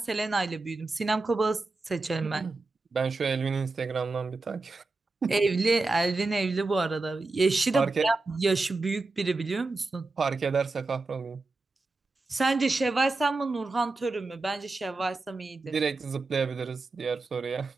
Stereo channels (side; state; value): left; quieter; 3.5 dB